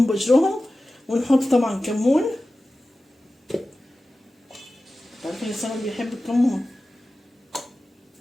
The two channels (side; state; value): both; normal; correlation 0.95